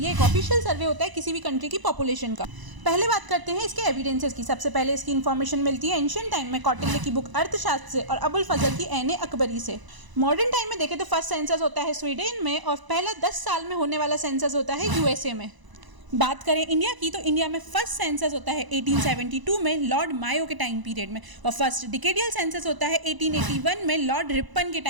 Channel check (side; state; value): left; late; 1.0 ms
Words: एक ऑफिशियल सर्वे होता है किसी भी कंट्री की पॉपुलेशन का। पहले बात करते हैं इसके एविडेंसेस की। सबसे पहले इसकी इन्फॉर्मेशन मिलती है एंशियंट टाइम में कौटिल्य की बुक अर्थशास्त्र से और अबुल फजल की ऐन अकबरी से। मॉडर्न टाइम में देखें तो फर्स्ट सेंसस होता है स्वीडन में और पहला 10 साल में होने वाला सेंसस होता है यूएसए में। बात करें इंडिया की तो इंडिया में फर्स्ट सेंसस होता है 1872 में लॉर्ड मायो के टाइम पीरियड में और फर्स्ट डिकेडियल सेंसस होता है 1881 में लॉर्ड रिपन के